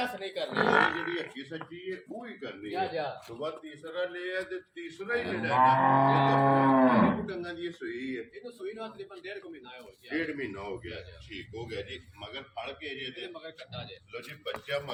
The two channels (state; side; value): identical; both; correlation 1.00